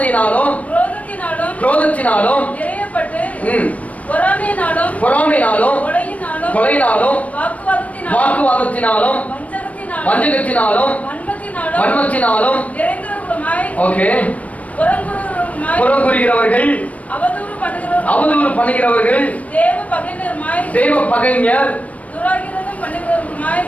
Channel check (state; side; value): late; right; 0.068 ms